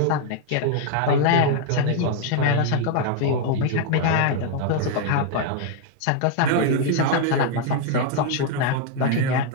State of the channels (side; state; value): both; different; correlation 0.00